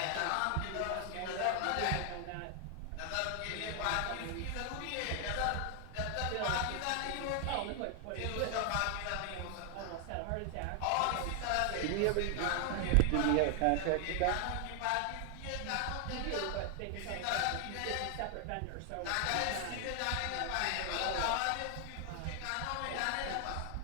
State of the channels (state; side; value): different; both; correlation 0.00